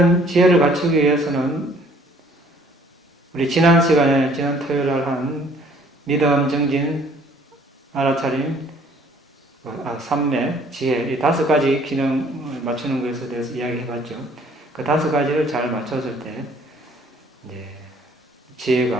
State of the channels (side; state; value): both; normal; correlation 0.58